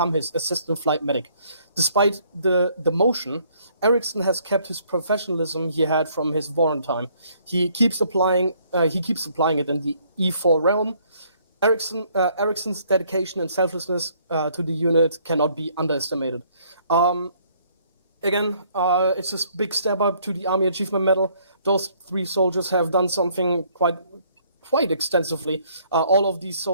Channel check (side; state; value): both; inverted; correlation -0.64